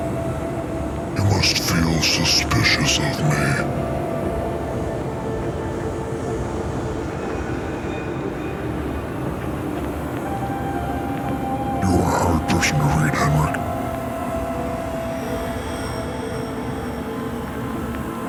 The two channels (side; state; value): both; identical; correlation 1.00